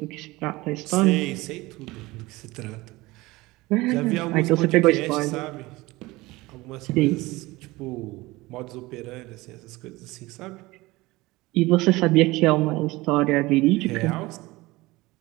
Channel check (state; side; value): quieter; left; 20.7 dB